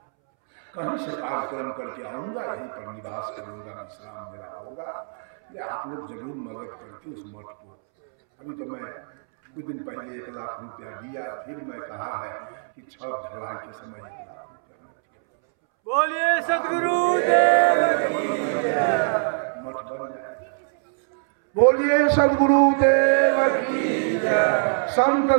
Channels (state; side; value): silent; left; 62 dB below the other